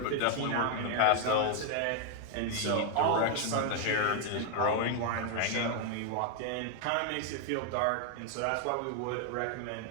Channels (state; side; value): different; both; correlation 0.00